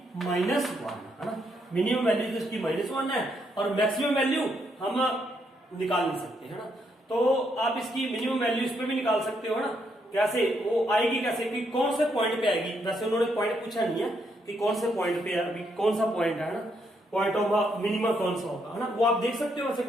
माइनस वन, है ना। मिनिमम वैल्यू तो इसकी माइनस वन है, और मैक्सिमम वैल्यू हम निकाल नहीं सकते, है ना। तो आप इसकी मिनिमम वैल्यू इस पे भी निकाल सकते हो ना, कैसे वो आएगी, कैसे कि कौन से पॉइंट पे आएगी। वैसे उन्होंने पॉइंट पूछा नहीं है कि कौन से पॉइंट पे है, अभी कौन सा पॉइंट है ना, पॉइंट ऑफ मिनिमम कौन सा होगा, है ना, वो आप देख सकते हो वैसे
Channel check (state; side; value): normal; both; correlation 0.76